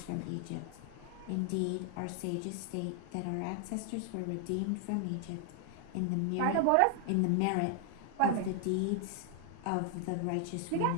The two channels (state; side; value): different; both; correlation 0.00